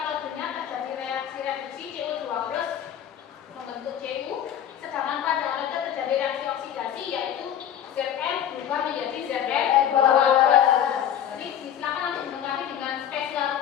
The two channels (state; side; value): quieter; right; 9.9 dB